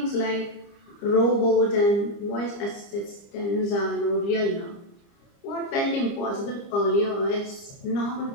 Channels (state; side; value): late; right; 30 ms